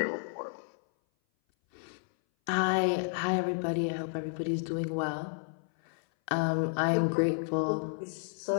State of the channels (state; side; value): silent; right; 57 dB below the other